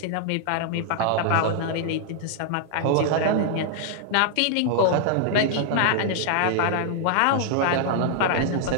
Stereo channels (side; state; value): both; different; correlation -0.01